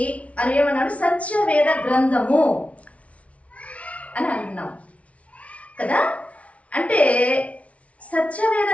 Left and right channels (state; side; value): late; right; 0.064 ms